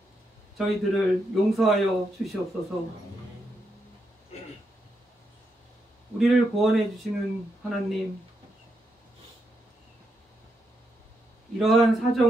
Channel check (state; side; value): normal; both; correlation 0.82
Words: 저희들을 용서하여 주시옵소서. 우리를 구원해 주시는 하나님, 이러한